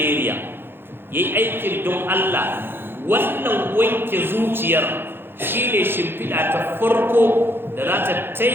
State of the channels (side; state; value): left; late; 0.10 ms